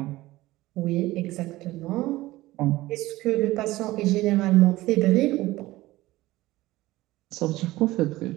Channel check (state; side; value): quieter; left; 17.8 dB